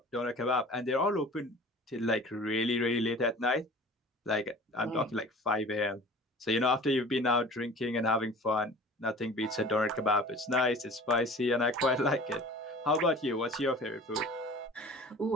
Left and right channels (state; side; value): normal; both; correlation 0.43